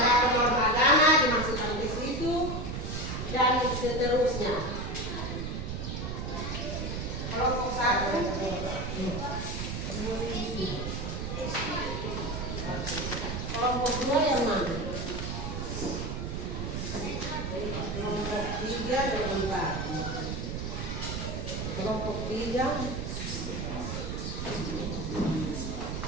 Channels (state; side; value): noise; right; rumble, 4 dB below the sound